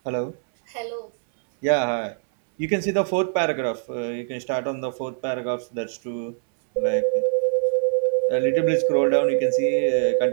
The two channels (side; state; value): left; silent; 63 dB below the other